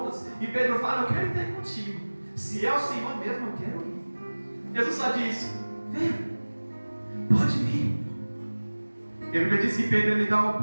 e Pedro fala: eu quero ir contigo. Se é o Senhor mesmo, eu quero ir. Jesus só diz: vem, pode vir. E a Bíblia diz que Pedro ele dá um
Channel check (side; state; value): both; inverted; correlation -1.00